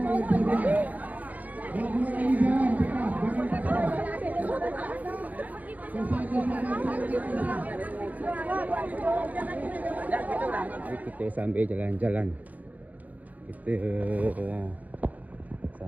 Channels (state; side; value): late; left; 0.078 ms